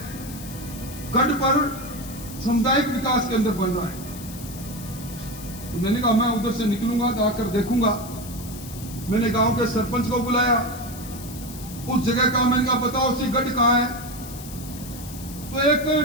गढ़ पर सामुदायिक विकास केंद्र बन रहा है। तो मैंने कहा मैं उधर से निकलूंगा तो आकर देखूंगा। मैंने गांव के सरपंच को बुलाया, उस जगह का मैंने कहा बताओ सी गढ़ कहाँ है? तो एक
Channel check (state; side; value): noise; left; hiss, 14 dB below the sound